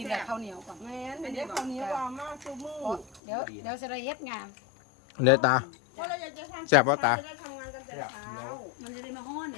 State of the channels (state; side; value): drops out; right; at 3.2 s